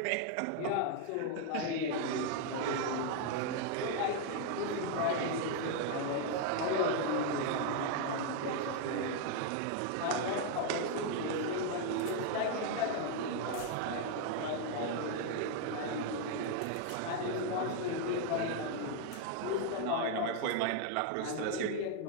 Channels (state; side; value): different; both; correlation 0.00